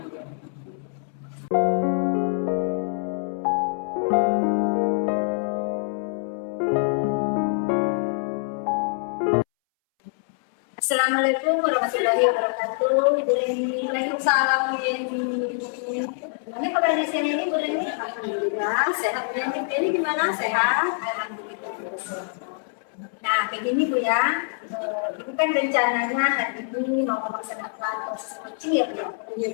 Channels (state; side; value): silent; right; 62 dB below the other